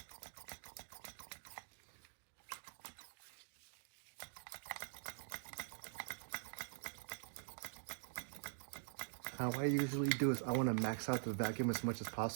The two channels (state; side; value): silent; left; digital silence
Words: How I usually do is I want to max out the vacuum as much as